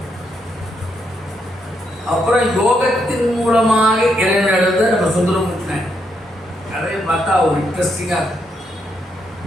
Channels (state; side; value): normal; both; correlation 0.78